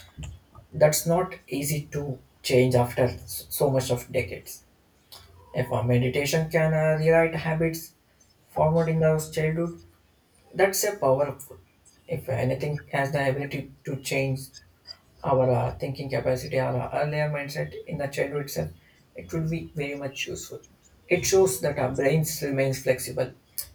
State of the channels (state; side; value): identical; both; correlation 1.00